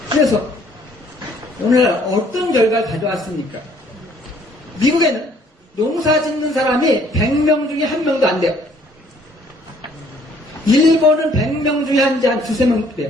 그래서 오늘날 어떤 결과를 가져왔습니까? 미국에는 농사 짓는 사람이 100명 중에 1명도 안 돼요. 일본은 100명 중에 한 2~3명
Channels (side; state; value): both; normal; correlation 0.61